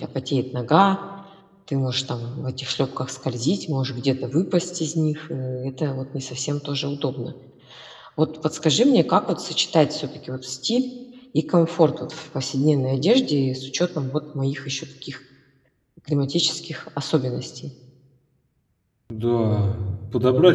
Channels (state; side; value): identical; both; correlation 1.00